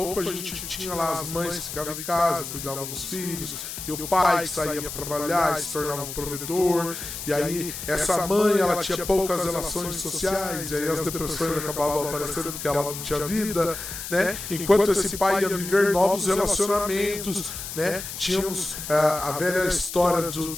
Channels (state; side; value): noise; left; hiss, 8 dB below the sound